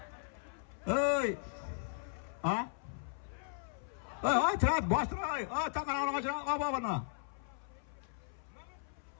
Ey, Ha? Ay, trat, bastır ay. Takan ağaçına aba bana.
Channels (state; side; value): silent; right; 53 dB below the other